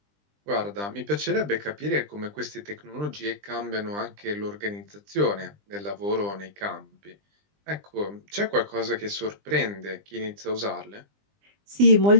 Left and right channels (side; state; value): left; late; 20 ms